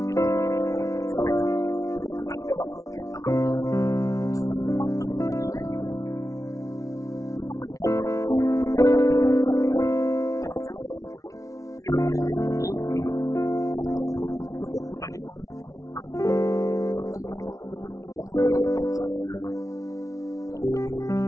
kita sebagai orang percaya. Dikatakan di dalam Alkitab ya, semua pengikut Yesus itu mendapatkan beberapa julukan ya. Pada zaman itu, orang-orang yang ikut Yesus, kadang mereka disebut sebagai orang Kristen. Kadang mereka disebut sebagai orang percaya. Ya, dan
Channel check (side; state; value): right; late; 0.16 ms